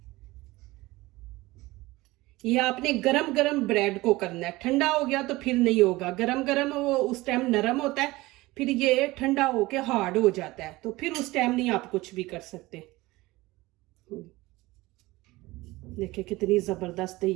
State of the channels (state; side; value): quieter; left; 19.9 dB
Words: ये आपने गरम गरम ब्रेड को करना है, ठंडा हो गया तो फिर नहीं होगा। गरम गरम वो उस टाइम नरम होता है, फिर ये ठंडा होके हार्ड हो जाता है, तो फिर उस टाइम नहीं आप कुछ भी कर सकते। देखिए कितनी ज़बरदस्त है।